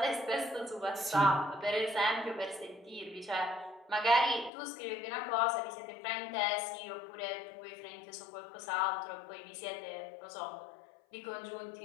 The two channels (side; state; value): right; drops out; at 4.5 s